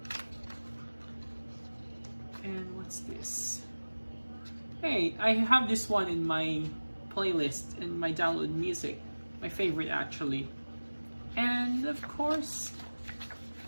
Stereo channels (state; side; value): inverted; both; correlation -1.00